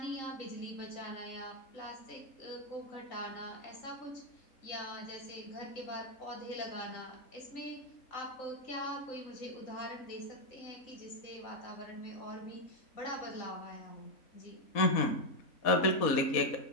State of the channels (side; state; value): right; late; 3.8 ms